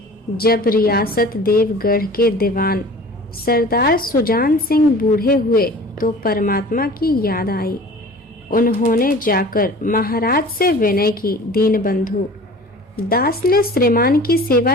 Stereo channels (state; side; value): normal; both; correlation 0.43